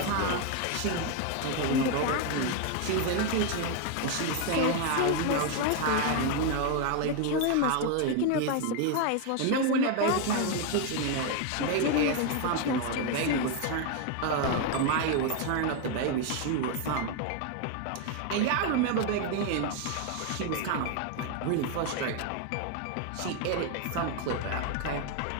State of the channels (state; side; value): different; both; correlation 0.01